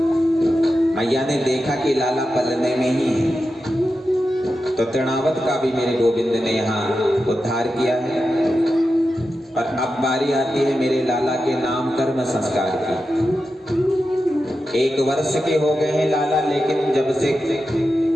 मैया ने देखा कि लाला पलने में ही है तो तृणावत का भी मेरे गोविंद ने यहाँ उद्धार किया है। और अब बारी आती है मेरे लाला के नाम कर्म संस्कार की। 1 वर्ष के हो गए हैं लाला, लेकिन जब से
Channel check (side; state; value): both; normal; correlation 0.90